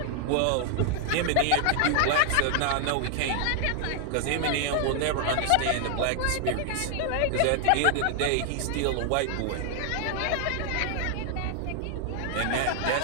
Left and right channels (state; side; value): different; both; correlation 0.00